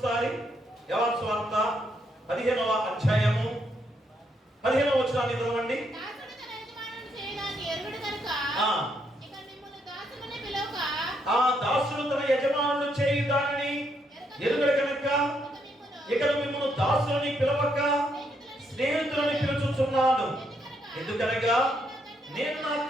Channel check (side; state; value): both; normal; correlation 0.76